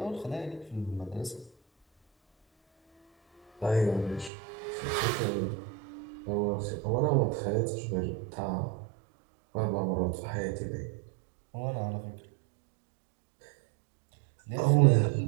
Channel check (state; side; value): drops out; left; at 4.3 s